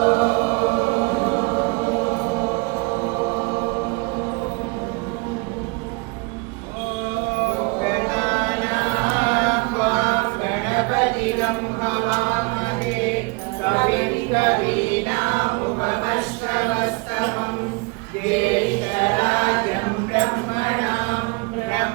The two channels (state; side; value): quieter; left; 28.1 dB